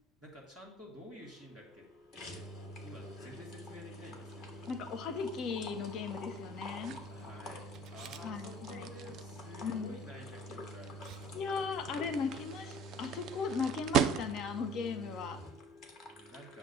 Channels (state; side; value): normal; both; correlation 0.49